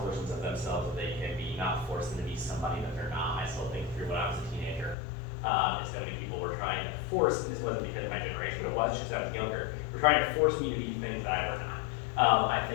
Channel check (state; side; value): drops out; right; at 5.0 s